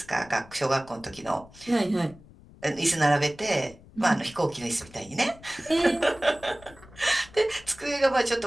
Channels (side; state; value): left; noise; rumble, 22 dB below the sound